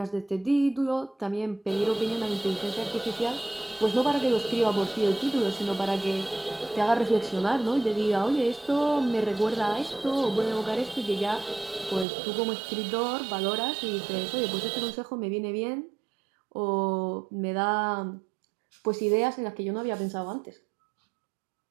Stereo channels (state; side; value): drops out; left; at 12.1 s